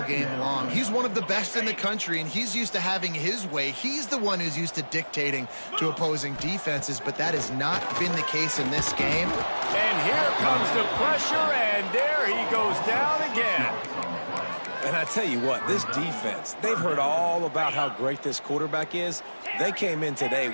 game long. He's one of the best in the country, and he's used to having his way. He's the one who's used to dictating to opposing defenses, but that has not been the case in this game. And here comes the pressure, and there he goes down again. And I tell you what, this defense, they've heard all about how great this quarterback is. They came in today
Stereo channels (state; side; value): inverted; both; correlation -1.00